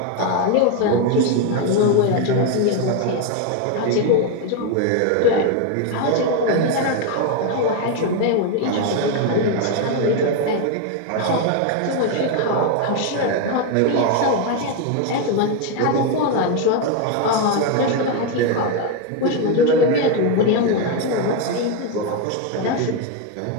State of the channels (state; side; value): different; both; correlation 0.02